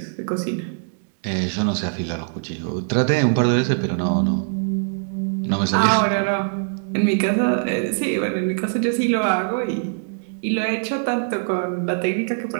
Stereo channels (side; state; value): left; silent; digital silence